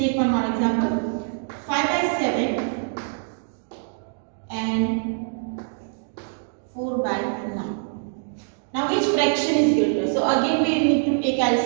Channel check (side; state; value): left; silent; digital silence